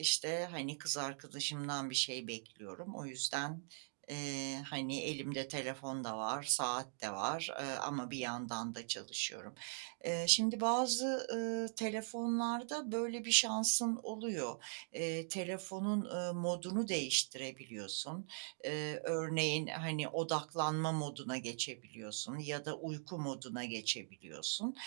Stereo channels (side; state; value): left; silent; digital silence